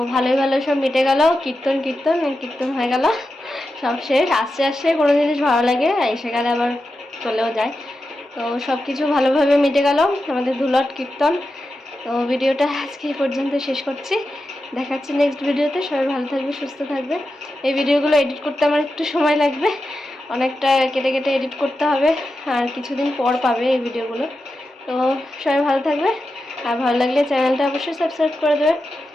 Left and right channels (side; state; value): both; normal; correlation 0.90